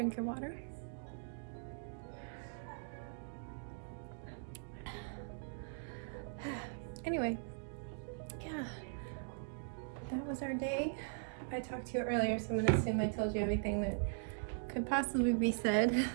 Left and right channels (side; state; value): left; silent; digital silence